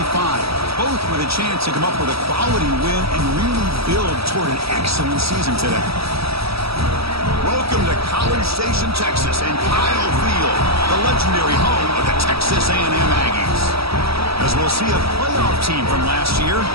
both with a chance to come up with a quality win and really build toward an excellent season today. Welcome to College Station, Texas, and Kyle Field, the legendary home of the Texas A&M Aggies. As we'll see a playoff team from last year,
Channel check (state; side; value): late; left; 0.77 ms